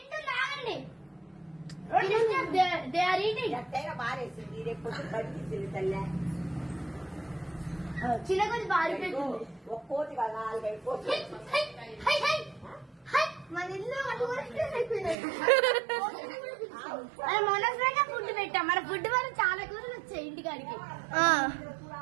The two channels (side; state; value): left; drops out; at 15.2 s